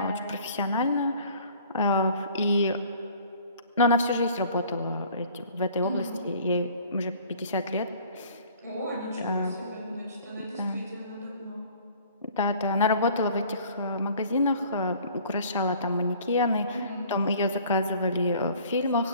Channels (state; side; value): inverted; both; correlation -0.52